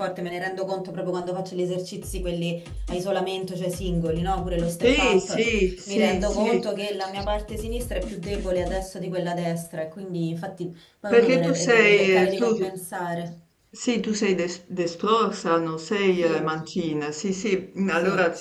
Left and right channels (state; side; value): identical; both; correlation 1.00